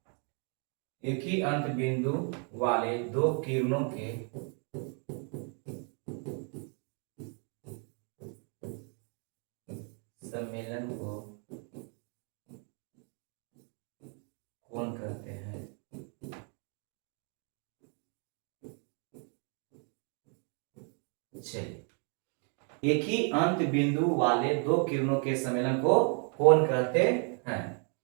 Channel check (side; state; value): left; quieter; 39.9 dB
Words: एक ही अंत बिंदु वाले दो किरणों के सम्मेलन को कोण कहते हैं। चलिए, एक ही अंत बिंदु वाले दो किरणों के सम्मेलन को कोण कहते हैं,